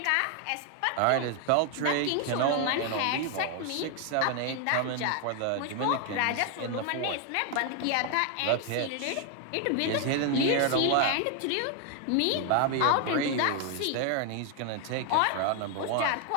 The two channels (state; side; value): different; both; correlation 0.01